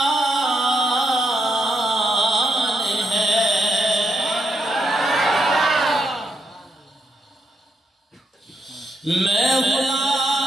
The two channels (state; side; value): normal; both; correlation 0.79